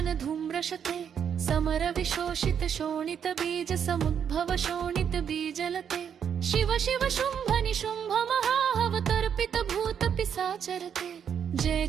धूम्रशते समर विशोषित शोणित बीज समुद्भव शोणित बीजलते शिव शिव शुंभ निशुंभ महावतर्पित भूत पिशाचरते जय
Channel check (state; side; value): quieter; left; 8.0 dB